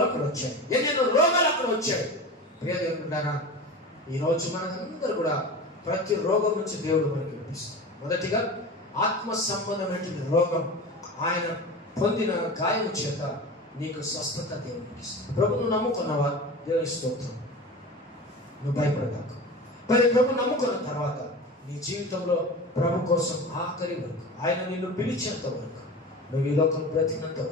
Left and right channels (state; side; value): normal; both; correlation 0.32